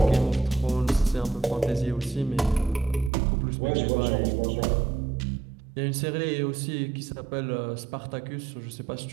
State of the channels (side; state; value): left; drops out; at 3.1 s